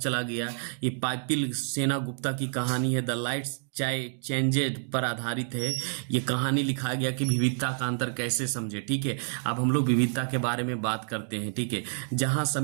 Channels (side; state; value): left; silent; digital silence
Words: गया। ये पाइपिल सेना गुप्ता की कहानी है, द लाइट्स चेंजेड पर आधारित है। ये कहानी लिखा गया कि विविधता का अंतर कैसे समझे। ठीक है, अब हम लोग विविधता के बारे में बात करते हैं। ठीक है, जहां